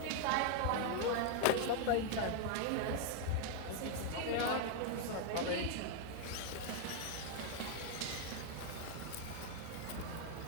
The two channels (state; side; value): different; both; correlation 0.00